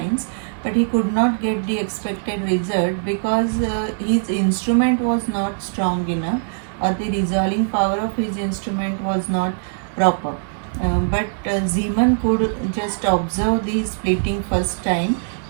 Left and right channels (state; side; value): silent; left; digital silence